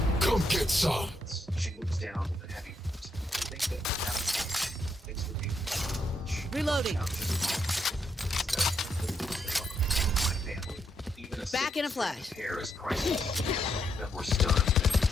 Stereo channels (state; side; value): normal; both; correlation 0.78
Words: Come get some. She looks down with a heavy foot. I think that things would be Reloading. my family. Even a Back in a flash. hair is priceless. That we're stunned and